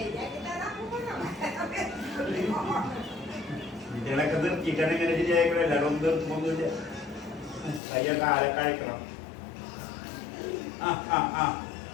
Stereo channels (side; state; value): right; drops out; at 7.8 s